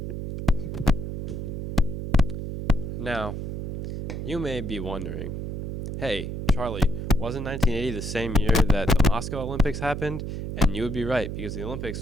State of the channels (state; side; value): noise; right; hum, 4 dB below the sound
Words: Now, you may be wondering, hey, Charlie, wasn't 1980 the same year that the Moscow Olympics happened? And you would be right, because the